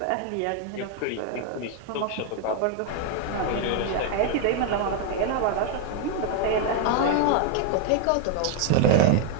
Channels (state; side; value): different; both; correlation 0.01